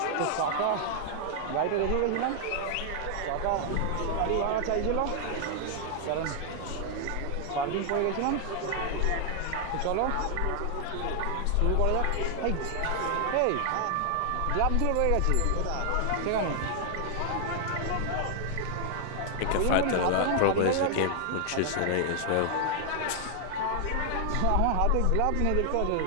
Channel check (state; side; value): different; both; correlation 0.00